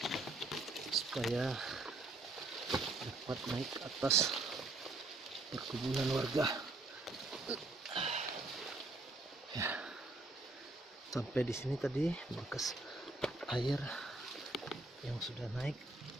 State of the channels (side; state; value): left; quieter; 3.0 dB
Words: supaya dapat naik ke atas perkebunan warga. Ya. Sampai di sini tadi bekas air yang sudah naik.